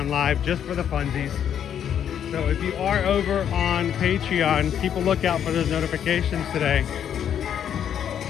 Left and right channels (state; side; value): quieter; right; 9.1 dB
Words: live just for the funsies. So if you are over on Patreon, keep a lookout for those notifications today.